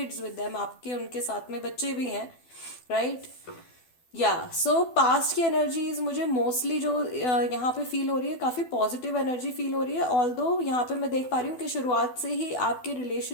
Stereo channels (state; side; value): late; right; 12 ms